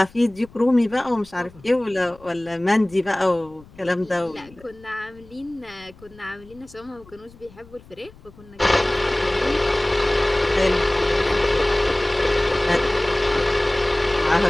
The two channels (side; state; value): left; noise; rumble, 24 dB below the sound